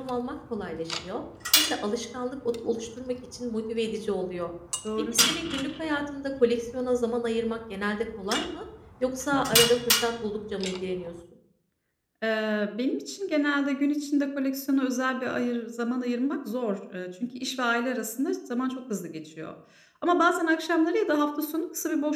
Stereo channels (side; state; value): both; identical; correlation 1.00